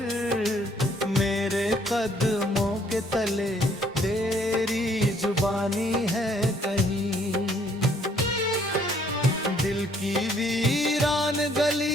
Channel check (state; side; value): normal; both; correlation 0.64